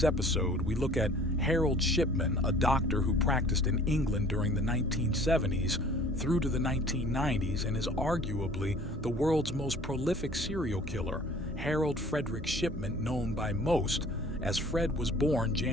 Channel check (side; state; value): both; normal; correlation 0.50